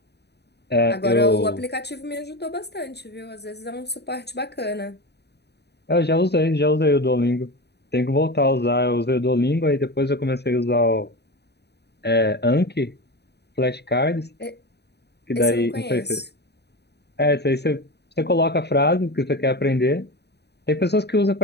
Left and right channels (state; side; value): late; right; 0.48 ms